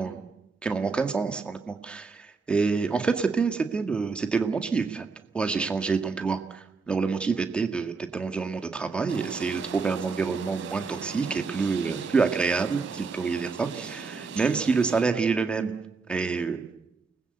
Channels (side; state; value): left; quieter; 4.6 dB